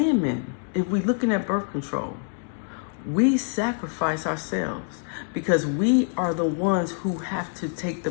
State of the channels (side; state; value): right; silent; 61 dB below the other